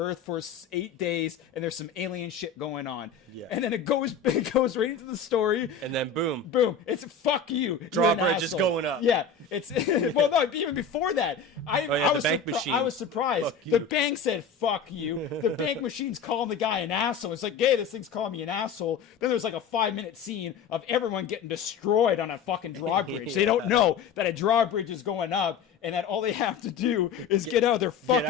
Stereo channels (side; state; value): right; quieter; 6.0 dB